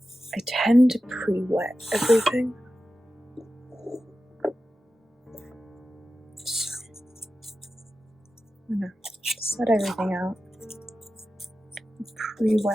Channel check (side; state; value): both; normal; correlation 0.93